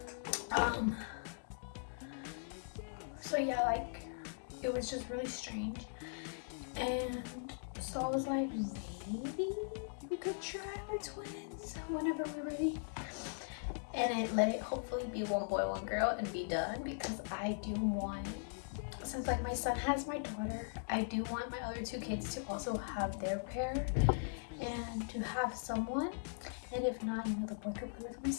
So yeah, like it was just really strange. And so I was like, maybe we could try with twins whenever we're ready. And let it hopefully be one boy, one girl and be done, because I do want, since like my son has my daughter, I do want my other 2 kids to also have their pair and to have someone. And if not, you know, the boy could play with my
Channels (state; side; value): silent; right; digital silence